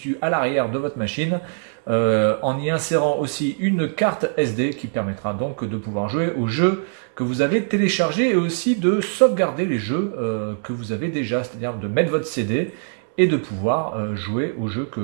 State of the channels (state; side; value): silent; left; digital silence